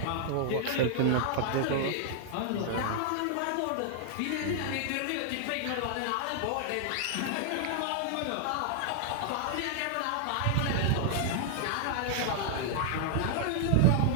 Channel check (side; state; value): both; different; correlation -0.01